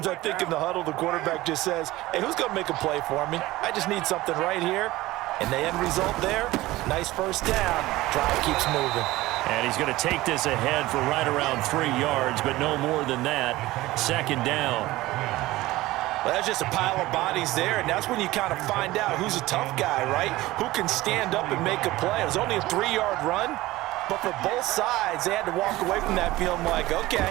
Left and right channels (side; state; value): left; quieter; 18.0 dB